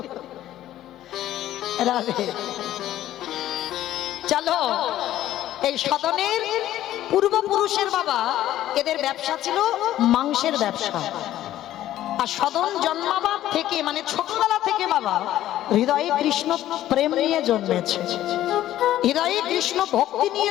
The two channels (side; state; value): right; quieter; 13.2 dB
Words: রাধে। চলো, এই সদনের পূর্বপুরুষের বাবা, এদের ব্যবসা ছিল মাংসের ব্যবসা। আর সদন জন্মাবার থেকে, মানে ছোটবেলা থেকে বাবা হৃদয়ে কৃষ্ণ প্রেম নিয়ে জন্মেছে, হৃদয়ে কৃষ্ণ ভক্তি